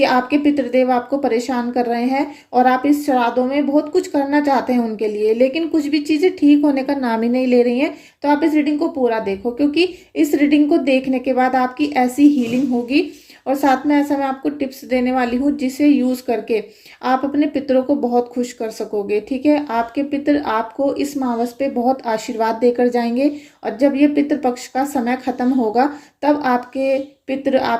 आपके पितृदेव आपको परेशान कर रहे हैं और आप इस श्राद्धों में बहुत कुछ करना चाहते हैं उनके लिए, लेकिन कुछ भी चीज़ें ठीक होने का नाम ही नहीं ले रही हैं, तो आप इस रीडिंग को पूरा देखो, क्योंकि इस रीडिंग को देखने के बाद आपकी ऐसी हीलिंग होगी और साथ में ऐसा मैं आपको टिप्स देने वाली हूँ जिसे यूज़ करके आप अपने पितरों को बहुत खुश कर सकोगे। ठीक है, आपके पितर आपको इस मावस पे बहुत आशीर्वाद देकर जाएंगे और जब ये पितृ पक्ष का समय खत्म होगा तब आपके पितृ,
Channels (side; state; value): both; identical; correlation 1.00